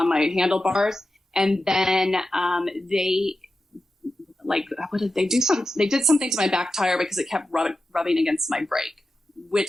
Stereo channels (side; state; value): both; normal; correlation 0.91